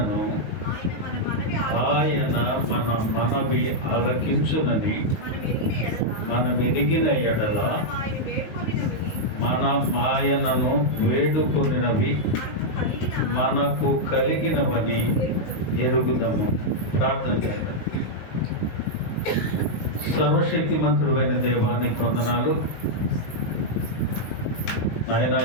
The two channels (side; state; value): right; late; 19 ms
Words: ఆయన మన మనవి ఆలకించునని మనం ఎదిగిన ఎడల ఆయనను వేడుకొనినవి మనకు కలిగినవని ఎరుగుదము. ప్రార్థన చేయండి. సర్వశక్తిమంతుడైన దేవానికి వందనాలు. ఆయన